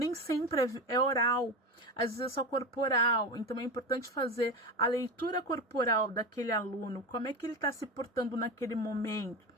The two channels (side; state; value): both; normal; correlation 0.22